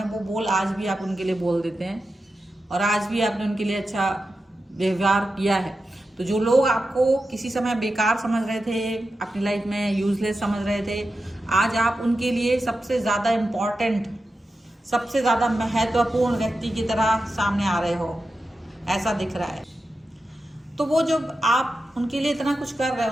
वो बोल आज भी आप उनके लिए बोल देते हैं, और आज भी आपने उनके लिए अच्छा व्यवहार किया है। तो जो लोग आपको किसी समय बेकार समझ रहे थे, अपनी लाइफ में यूजलेस समझ रहे थे, आज आप उनके लिए सबसे ज़्यादा इम्पॉर्टेंट, सबसे ज़्यादा महत्वपूर्ण व्यक्ति की तरह सामने आ रहे हो, ऐसा दिख रहा है। तो वो जब आप उनके लिए इतना कुछ कर रहे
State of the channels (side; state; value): both; normal; correlation 0.91